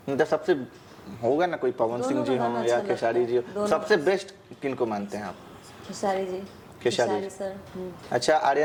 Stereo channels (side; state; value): both; identical; correlation 1.00